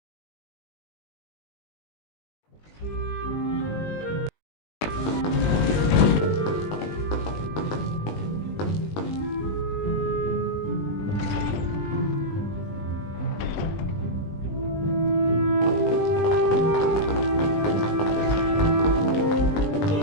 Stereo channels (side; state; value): right; late; 20 ms